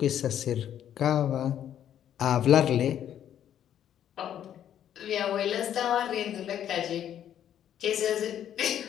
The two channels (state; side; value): quieter; right; 10.3 dB